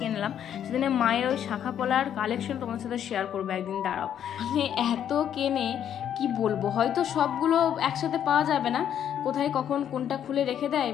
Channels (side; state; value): right; quieter; 9.6 dB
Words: সেদিনে মায়ের ওই শাঁখা পলার কালেকশন তোমাদের সাথে শেয়ার করবো একদিন, দাঁড়াও। মানে এত কেনে কি বলবো, হয়তো সবগুলো একসাথে পাওয়া যাবে না, কোথায় কখন কোনটা খুলে রেখে দেয়,